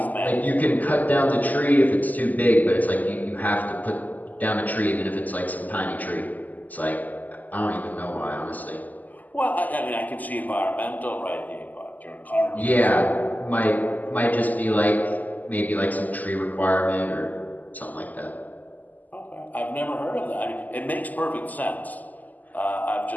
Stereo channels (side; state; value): right; late; 0.081 ms